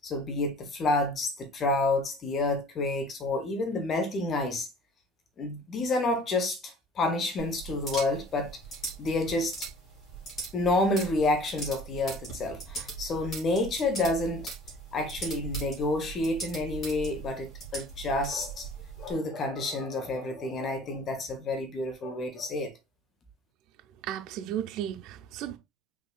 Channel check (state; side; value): normal; both; correlation 0.48